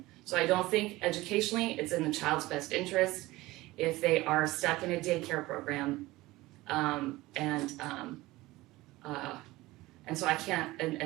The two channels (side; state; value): left; quieter; 19.1 dB